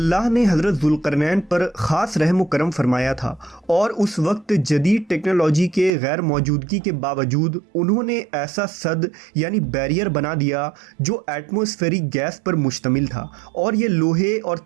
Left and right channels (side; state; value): left; drops out; at 5.9 s